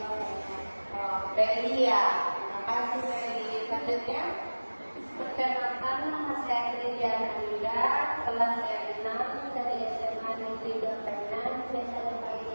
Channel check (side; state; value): both; inverted; correlation -1.00